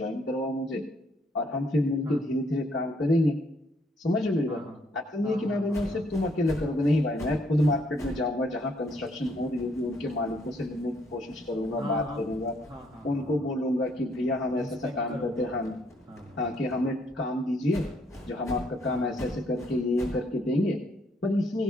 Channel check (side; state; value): both; normal; correlation 0.69